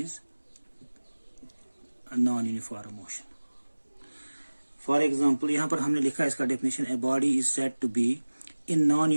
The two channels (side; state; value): both; inverted; correlation -1.00